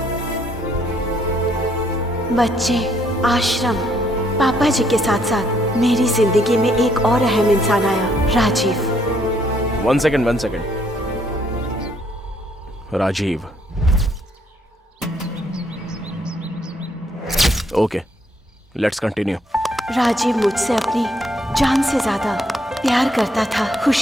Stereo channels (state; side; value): normal; both; correlation 0.69